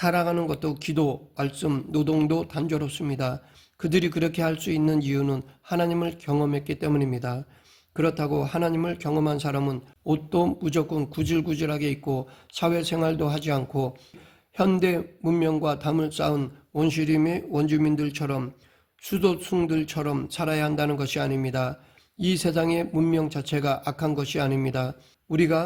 것도 기도, 말씀, 노동도 단조롭습니다. 그들이 그렇게 할 수 있는 이유는 하나님을 경험했기 때문입니다. 그렇다고 하나님을 경험한 사람은 옷도 무조건 구질구질하게 입고 사회생활도 하지 않고 현대 문명과 담을 쌓은 원시림의 원주민들처럼 수도승들처럼 살아야 한다는 것이 아닙니다. 이 세상의 문명 자체가 악한 것이 아닙니다.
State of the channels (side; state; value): both; identical; correlation 1.00